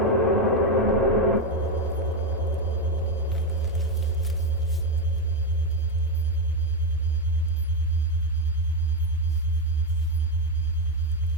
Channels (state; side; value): normal; both; correlation 0.07